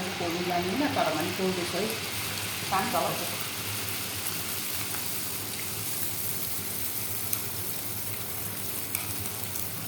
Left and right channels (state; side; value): identical; both; correlation 1.00